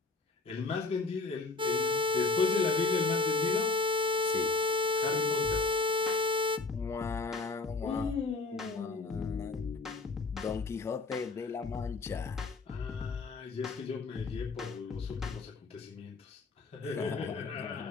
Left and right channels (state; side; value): quieter; right; 3.8 dB